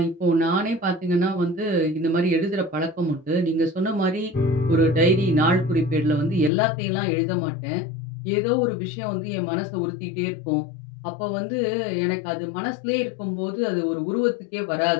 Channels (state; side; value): drops out; right; at 6.5 s